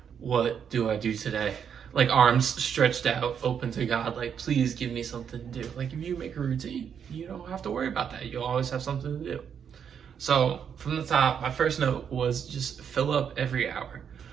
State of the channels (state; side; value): quieter; left; 7.7 dB